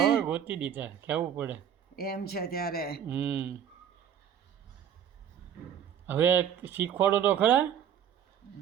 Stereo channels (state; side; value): quieter; left; 9.0 dB